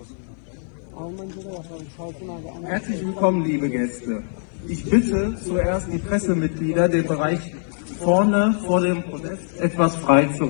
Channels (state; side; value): silent; right; digital silence